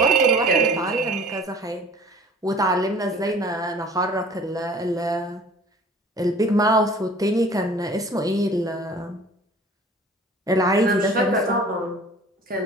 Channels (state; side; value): normal; both; correlation 0.47